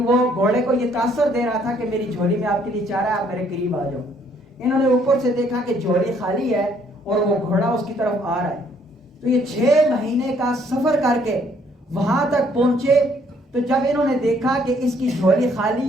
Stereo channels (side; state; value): both; normal; correlation 0.65